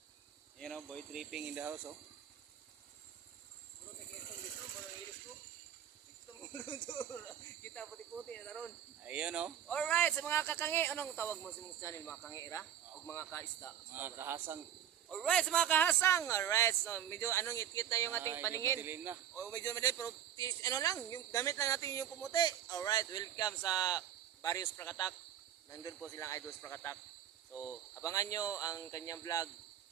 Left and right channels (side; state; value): left; quieter; 10.1 dB